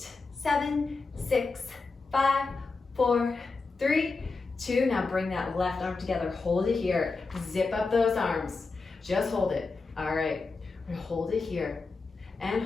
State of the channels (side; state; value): right; quieter; 4.1 dB